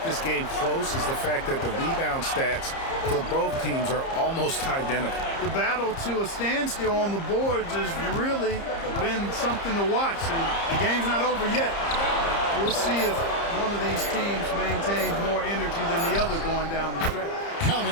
this game close is the fact that the rebound stats for both teams are almost identical. The battle to a standstill on the boards has really been something to watch, and the game's not over yet. We'll see if one of these teams maintains more energy than the other going down the stretch. Count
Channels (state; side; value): late; right; 30 ms